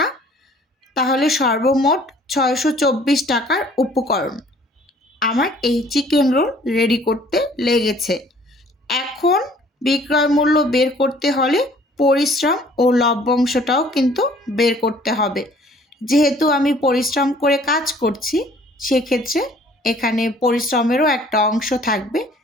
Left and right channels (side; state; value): both; normal; correlation 0.55